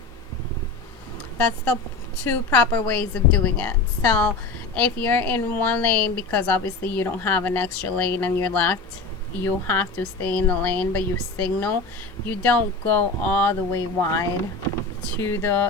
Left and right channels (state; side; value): quieter; right; 3.7 dB